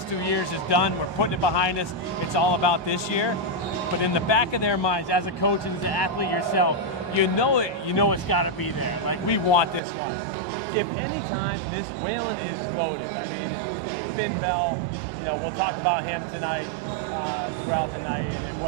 2 years is done. We're putting it behind us. It's all about this year. But in the back of their minds, as a coach and as an athlete yourself, you know it's got to be there. Like, we want this one. If any time, this Wayland is loaded. I mean, Finn Bell, we'll talk about him tonight, throughout the night, and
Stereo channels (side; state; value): left; drops out; at 9.8 s